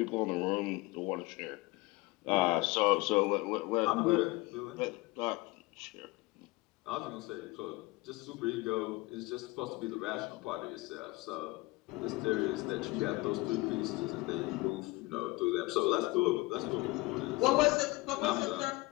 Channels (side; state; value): right; quieter; 22.3 dB